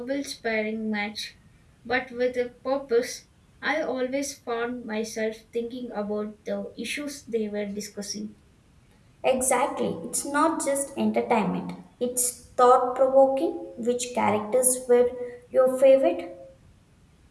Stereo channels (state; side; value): identical; both; correlation 1.00